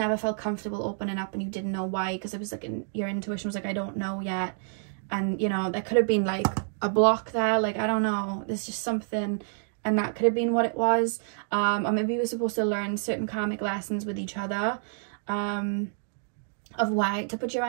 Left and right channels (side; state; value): left; silent; digital silence